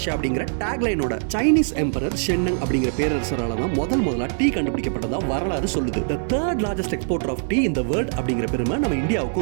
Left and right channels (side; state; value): left; silent; digital silence